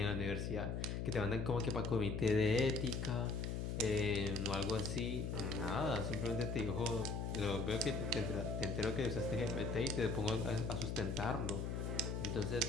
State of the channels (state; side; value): noise; left; hum, 2 dB below the sound